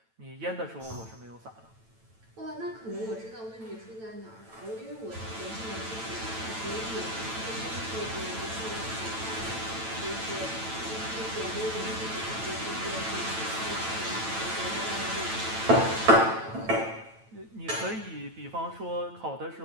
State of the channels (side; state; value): left; late; 9.0 ms